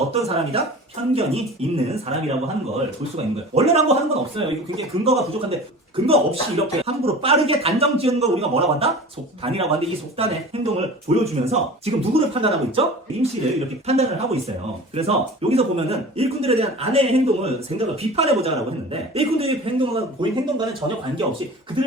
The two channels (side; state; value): both; normal; correlation 0.38